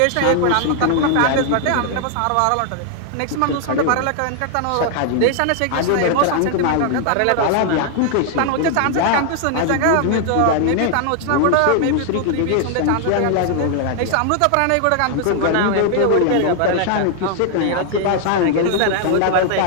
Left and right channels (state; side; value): different; both; correlation 0.00